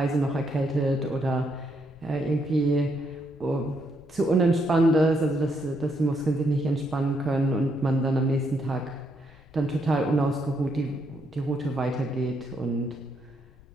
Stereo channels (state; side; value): noise; left; rumble, 25 dB below the sound